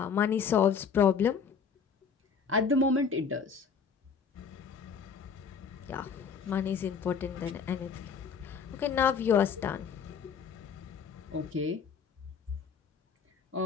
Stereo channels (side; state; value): right; quieter; 6.2 dB